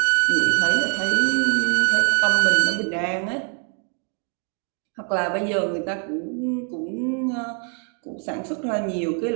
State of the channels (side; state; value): left; quieter; 36.9 dB